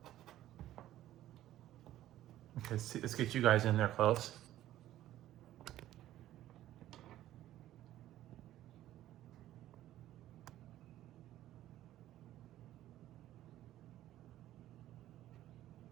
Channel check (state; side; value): quieter; left; 13.6 dB